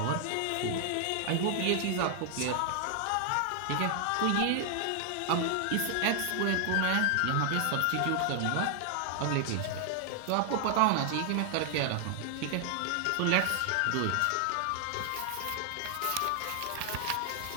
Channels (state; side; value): different; both; correlation 0.00